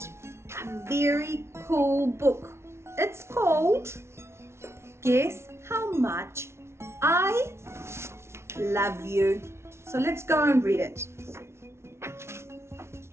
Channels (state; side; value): late; left; 0.13 ms